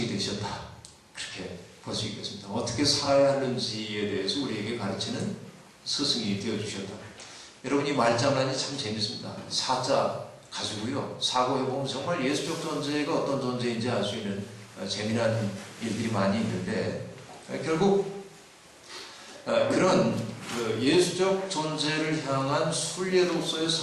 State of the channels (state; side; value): identical; both; correlation 1.00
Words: 되셨다. 그렇게 볼 수 있겠습니다. 어떻게 살아야 하는지에 대해서 우리에게 가르치는 스승이 되어주셨다. 여러분, 이 말장난이 참 재밌습니다. 사자 가지고요, 사고해보면 정말 예수적 존재가 어떤 존재인지 알 수 있는 재미난 일들이 많이 있는데, 결국 그런 예수적 존재를 향한 순례로서의